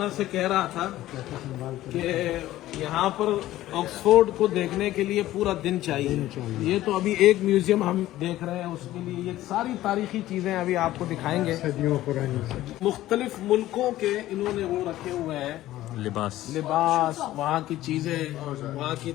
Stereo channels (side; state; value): right; quieter; 15.0 dB